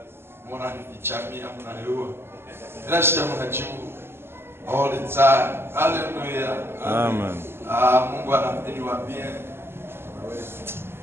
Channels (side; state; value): left; late; 0.12 ms